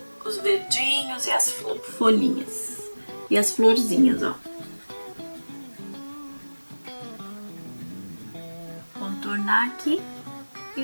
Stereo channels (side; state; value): both; inverted; correlation -1.00